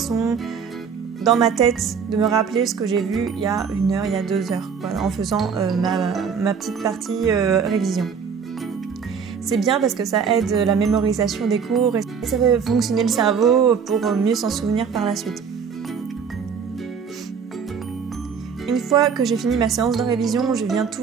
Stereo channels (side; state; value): left; quieter; 6.4 dB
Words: dans ma tête, de me rappeler ce que j'ai vu il y a 1 heure, il y a 2 heures, voilà, en faisant ma petite partie révision. C'est bien parce que ça aide la mémorisation des cours et ça fait fonctionner le cerveau pour mieux s'en souvenir par la suite. Une fois que j'ai fini ma séance de révision, je viens